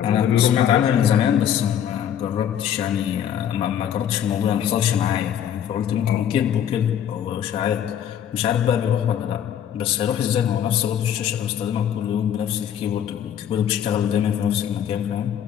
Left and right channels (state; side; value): quieter; right; 9.5 dB